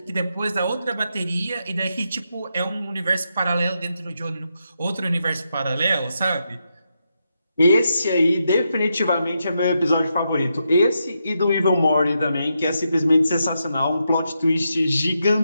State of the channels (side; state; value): both; inverted; correlation -0.84